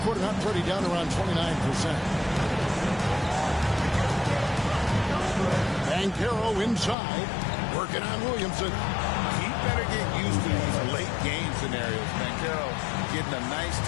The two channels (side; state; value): right; drops out; at 7.0 s